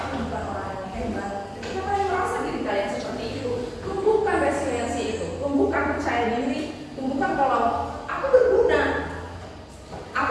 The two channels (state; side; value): identical; both; correlation 1.00